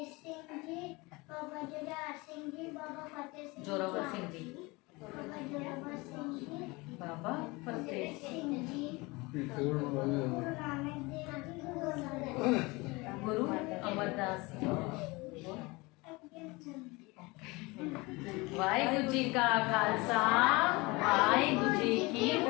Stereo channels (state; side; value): quieter; right; 24.3 dB